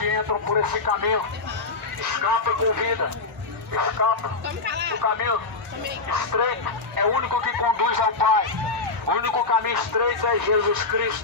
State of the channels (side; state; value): right; quieter; 3.9 dB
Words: entram por esse caminho. Escapa com vida. Escapa. O caminho estreito é o único que conduz ao Pai. O único caminho estreito é Jesus